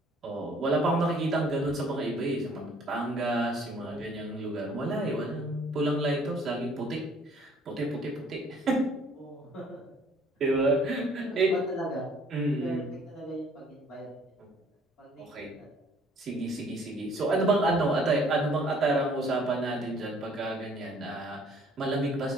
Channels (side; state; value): both; normal; correlation 0.58